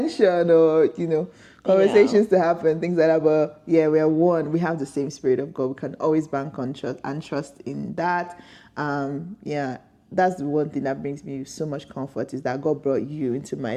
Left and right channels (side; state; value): both; identical; correlation 1.00